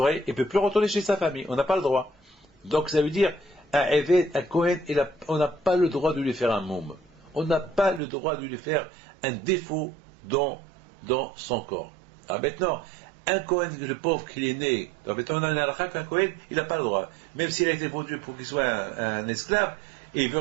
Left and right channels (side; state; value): left; drops out; at 8.0 s